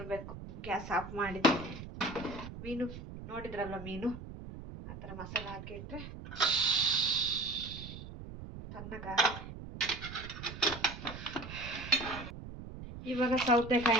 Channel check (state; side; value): noise; right; rumble, 11 dB below the sound